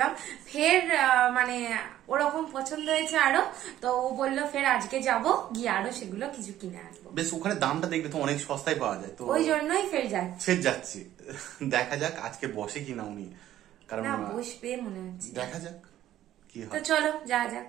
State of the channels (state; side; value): quieter; left; 12.8 dB